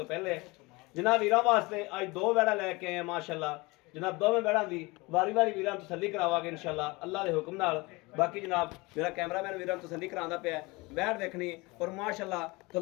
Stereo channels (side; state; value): right; quieter; 24.3 dB